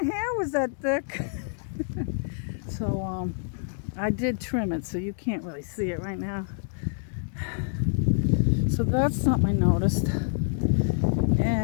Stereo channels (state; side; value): silent; right; digital silence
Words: was that thick. So I did trim it, so you can't really see it right now. So that's something I noticed.